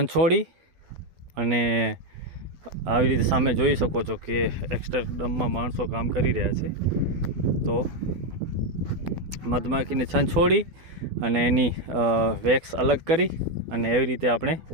અને આવી રીતે સામે જોઈ શકો છો કે એક્સ્ટરડમમાં માણસો કામ કરી રહ્યા છે। તો મધમાખીને છંછોડી અને એની વેક્સ અલગ કરી અને એવી રીતે આપણે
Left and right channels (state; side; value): late; left; 12 ms